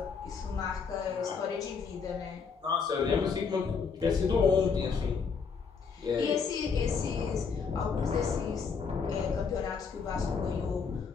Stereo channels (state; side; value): quieter; right; 5.6 dB